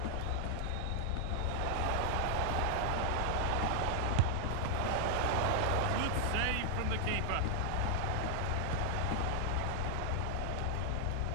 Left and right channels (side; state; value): both; different; correlation 0.00